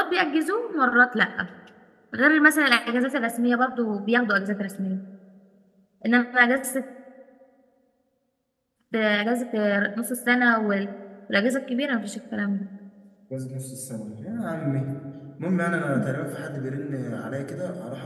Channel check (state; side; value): identical; both; correlation 1.00